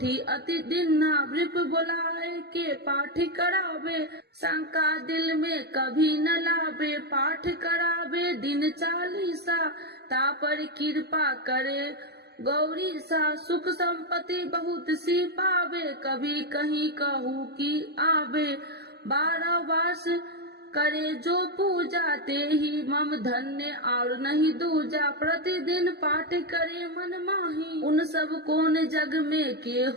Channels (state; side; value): late; left; 0.47 ms